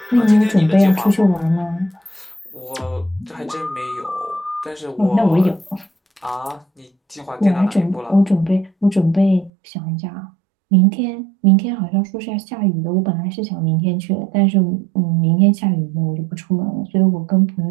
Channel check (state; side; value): drops out; left; at 9.5 s